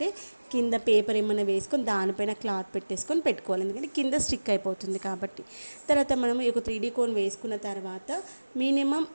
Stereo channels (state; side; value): inverted; both; correlation -1.00